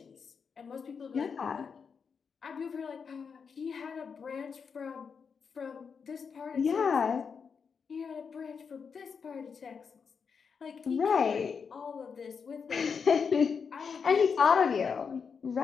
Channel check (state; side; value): quieter; right; 6.0 dB